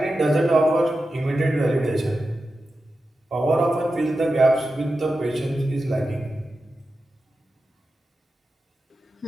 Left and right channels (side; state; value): both; normal; correlation 0.91